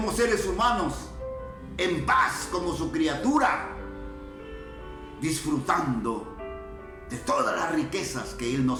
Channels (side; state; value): both; identical; correlation 1.00